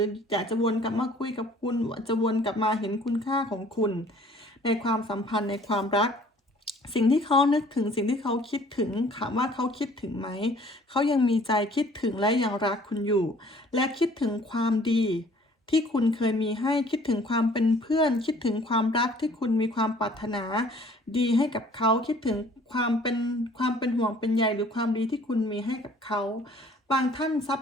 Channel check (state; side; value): normal; both; correlation 0.55